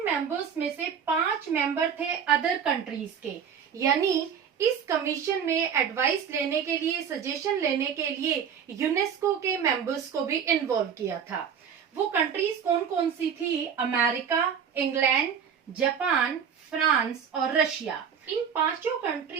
मेंबर्स में से 5 मेंबर थे अदर कंट्रीज के, यानी इस कमीशन में एडवाइस लेने के लिए, सजेशन लेने के लिए यूनेस्को के मेंबर्स को भी इन्वॉल्व किया था। वो कंट्रीज कौन कौन सी थी? अमेरिका, इंग्लैंड, जापान, फ्रांस और रशिया। इन 5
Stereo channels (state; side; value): quieter; left; 7.5 dB